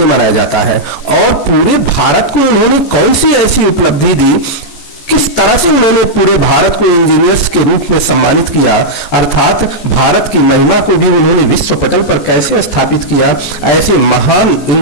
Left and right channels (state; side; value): late; right; 14 ms